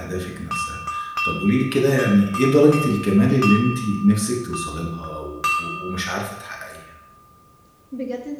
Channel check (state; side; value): identical; both; correlation 1.00